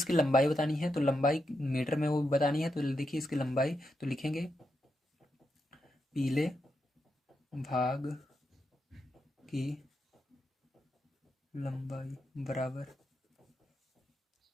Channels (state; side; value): normal; both; correlation 0.84